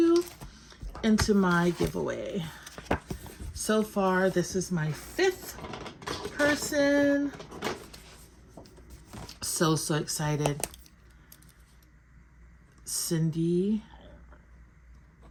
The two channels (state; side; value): identical; both; correlation 1.00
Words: into my giveaway. So far, this is my 5th person. So excited. Cindy